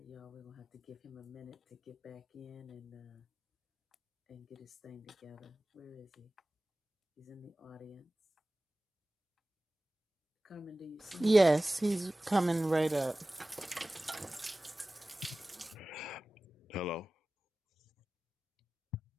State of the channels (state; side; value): normal; both; correlation 0.97